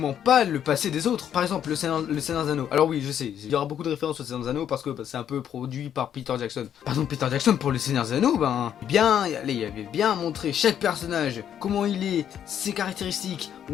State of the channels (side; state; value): right; quieter; 9.5 dB